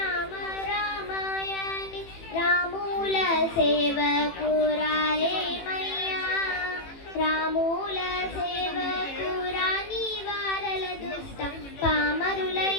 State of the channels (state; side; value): late; right; 18 ms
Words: రామాయణి రాముల సేవకు రారేమయ్యా, రాముల సేవకు రాని వారల దుష్ట పామరులై